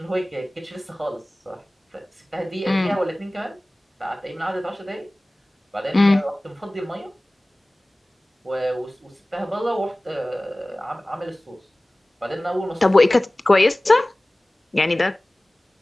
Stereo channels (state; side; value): normal; both; correlation 0.98